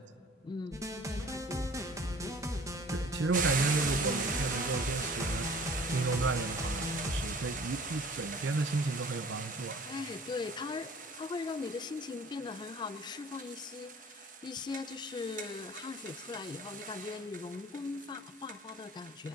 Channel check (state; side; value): normal; both; correlation 0.49